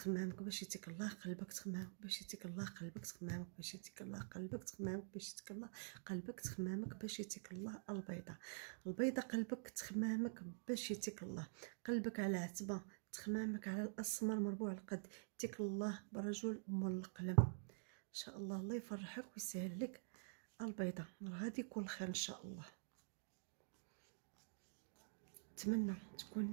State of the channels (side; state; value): left; silent; digital silence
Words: باش يتيك الله. قلبك تخمامك باش يتيك الله. قلبك تخمامك باش يتيك الله. قلبك تخمامك باش يتيك الله. قلبك تخمامك باش يتيك الله. البيضة البيضة قلبك تخمامك باش يتيك الله. قلبك على عتبة، تخمامك على الاسمر مربوع القد، يتيك الله برجل مول القلم ان شاء الله. الله يفرحك ويسهل لك البيضة، غادي يكون خير ان شاء الله. نتمنى